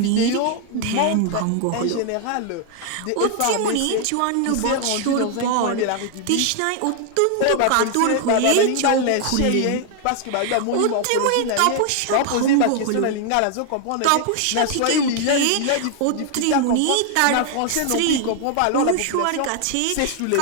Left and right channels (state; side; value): different; both; correlation 0.00